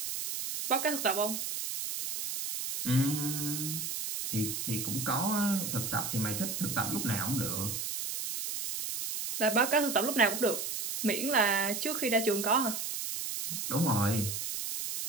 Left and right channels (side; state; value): right; noise; hiss, 4 dB below the sound